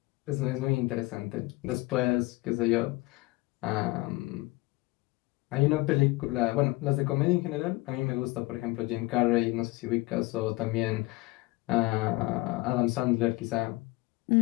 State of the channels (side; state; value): right; quieter; 21.6 dB